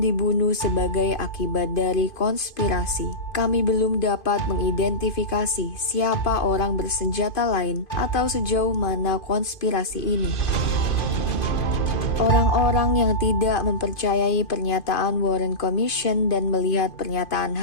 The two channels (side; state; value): right; late; 2.5 ms